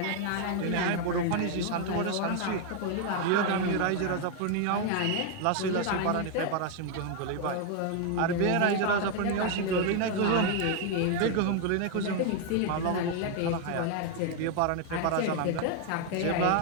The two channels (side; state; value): both; different; correlation 0.00